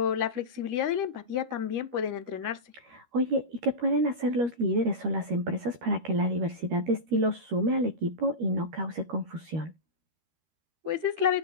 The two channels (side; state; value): left; late; 13 ms